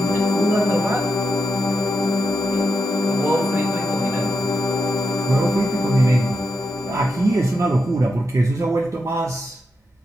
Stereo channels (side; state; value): both; normal; correlation 0.86